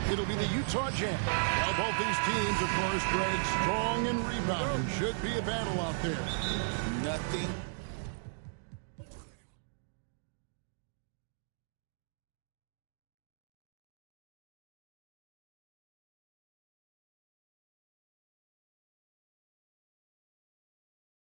it'll be the Utah Jazz. While both these teams, of course, Greg, strong and rebounding. Should be a battle out there. Nothing.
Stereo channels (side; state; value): left; silent; digital silence